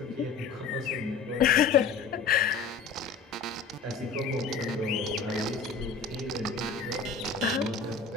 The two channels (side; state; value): right; quieter; 5.2 dB